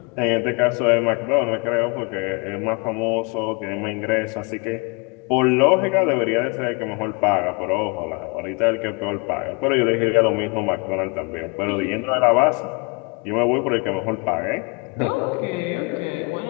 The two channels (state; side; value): quieter; right; 30.7 dB